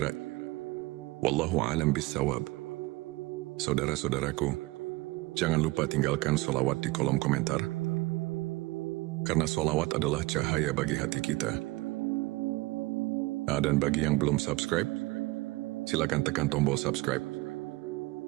Wallahu a'lam bissawab. Saudara-saudaraku, jangan lupa tinggalkan sholawat di kolom komentar, karena sholawat adalah cahaya bagi hati kita. Dan bagi yang belum subscribe, silakan tekan tombol subscribe,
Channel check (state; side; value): quieter; left; 21.2 dB